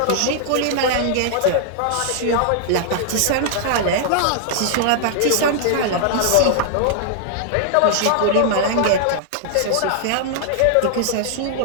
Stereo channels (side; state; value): both; different; correlation -0.01